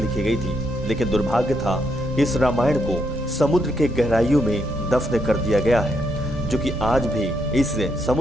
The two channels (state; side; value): normal; both; correlation 0.77